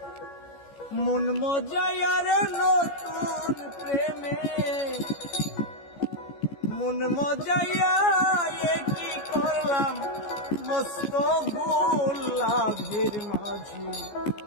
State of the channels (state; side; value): late; right; 14 ms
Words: মন মজায়া রে, নতুন প্রেমে মন মজায়া, কি করলাম মস্ত ভুল লাভের মাঝে